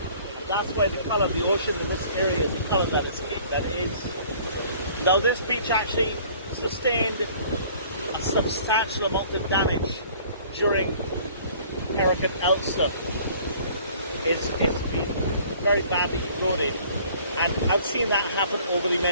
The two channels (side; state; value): both; inverted; correlation -0.53